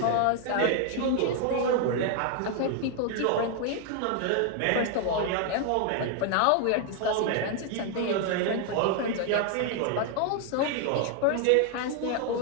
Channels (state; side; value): different; both; correlation 0.00